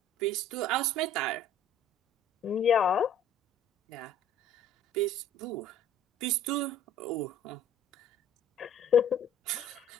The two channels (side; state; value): both; normal; correlation 0.52